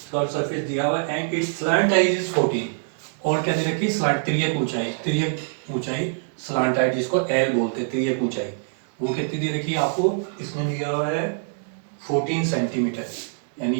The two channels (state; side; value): silent; left; digital silence